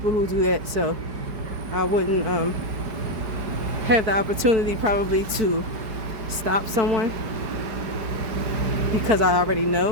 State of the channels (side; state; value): left; late; 4.8 ms